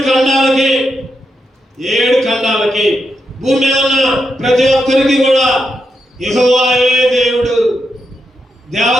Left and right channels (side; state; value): both; normal; correlation 0.84